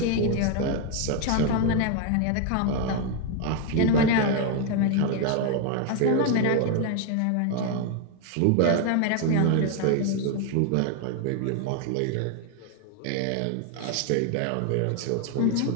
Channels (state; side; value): different; both; correlation 0.01